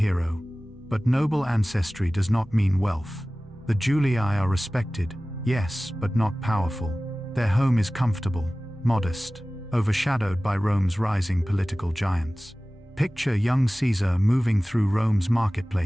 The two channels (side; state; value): both; normal; correlation 0.97